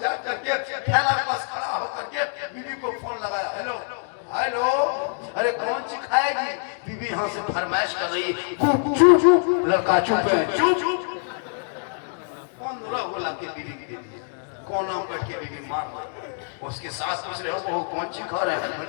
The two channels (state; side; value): silent; right; 62 dB below the other